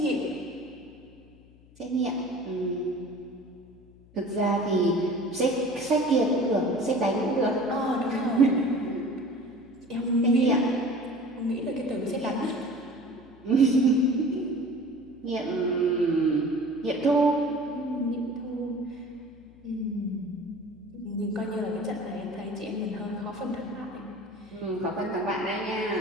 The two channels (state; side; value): noise; left; hum, 25 dB below the sound